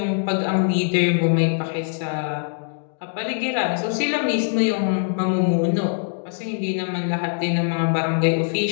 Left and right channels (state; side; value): silent; right; digital silence